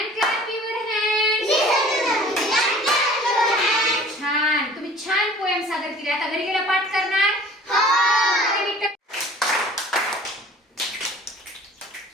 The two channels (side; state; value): both; normal; correlation 0.47